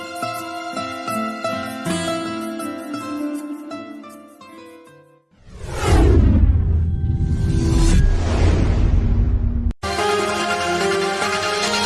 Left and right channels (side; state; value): both; identical; correlation 1.00